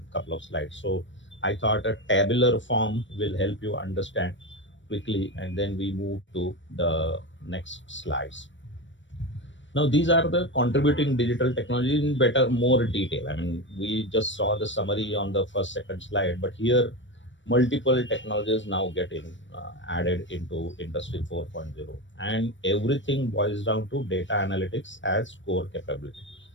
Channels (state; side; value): late; right; 0.54 ms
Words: couple of slides. So I thought a tabular form will help you understand quickly, and then we move to the next slides. Now, these are the contributing digital technology in better, more detail. I mean, we just saw the summary on the first, second slide, but here multiple technologies now get added into Industry 4.0, and everything boils down to data analytics as core capability.